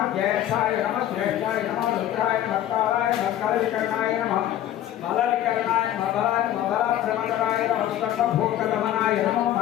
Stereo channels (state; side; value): quieter; right; 12.2 dB